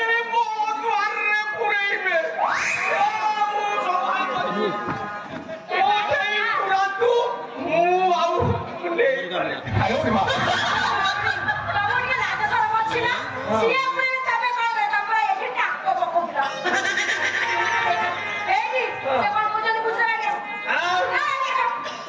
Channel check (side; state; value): both; identical; correlation 1.00